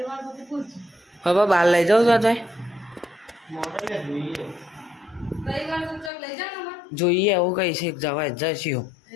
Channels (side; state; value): right; drops out; at 6.1 s